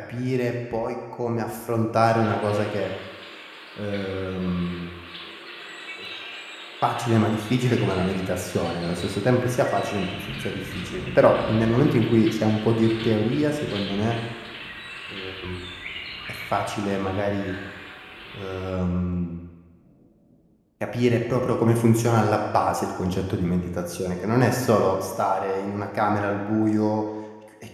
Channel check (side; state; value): both; identical; correlation 1.00